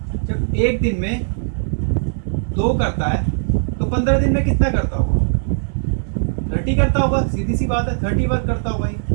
जब एक दिन में 2 करता है तो 15 दिन में कितना करता होगा, 30 करता होगा। सीधी सी बात है, 30 वर्क करता होगा ही,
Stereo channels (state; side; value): silent; left; digital silence